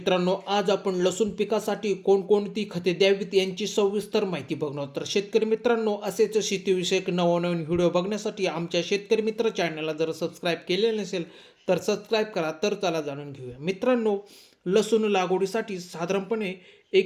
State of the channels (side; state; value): both; identical; correlation 1.00